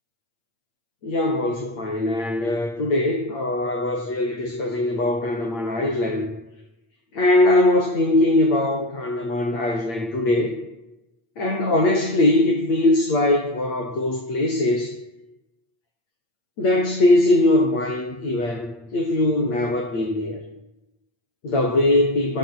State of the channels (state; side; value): late; right; 8.7 ms